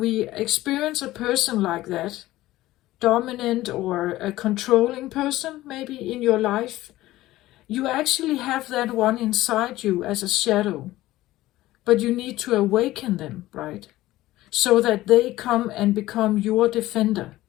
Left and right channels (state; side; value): quieter; right; 16.5 dB